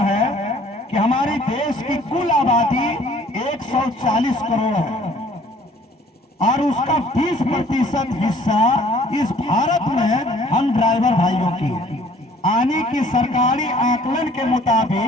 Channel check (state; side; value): normal; both; correlation 0.56